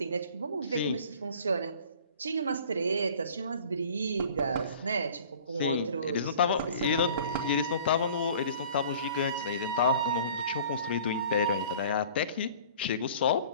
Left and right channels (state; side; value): inverted; both; correlation -0.47